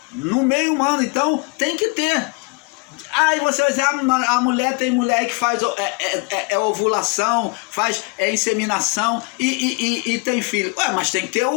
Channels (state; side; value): quieter; right; 30.1 dB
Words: No meio humano, então, tem que ter. Aí você vai dizer, a mulher tem mulher que faz ovulação, faz inseminação e tem filho. Ué, mas tem que ter